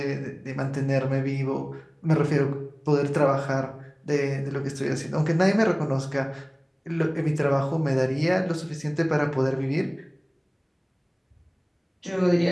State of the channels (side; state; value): both; identical; correlation 1.00